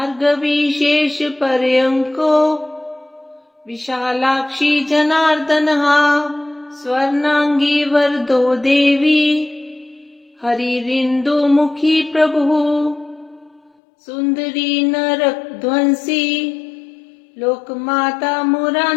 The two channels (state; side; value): drops out; right; at 13.7 s